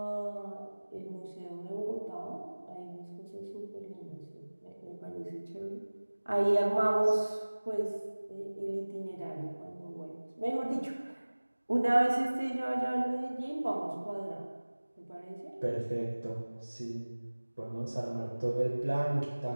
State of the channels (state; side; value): inverted; both; correlation -1.00